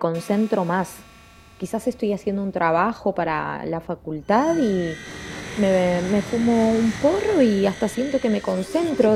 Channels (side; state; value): both; identical; correlation 1.00